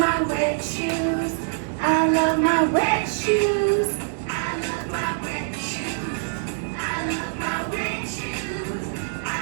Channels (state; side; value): silent; left; 62 dB below the other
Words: wet shoes. I love my wet shoes. I love my wet shoes. I love my wet shoes.